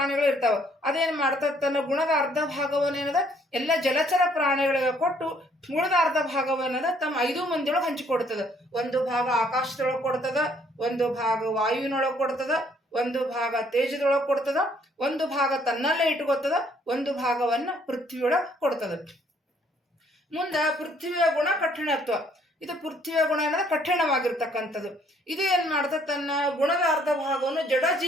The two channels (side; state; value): both; normal; correlation 0.64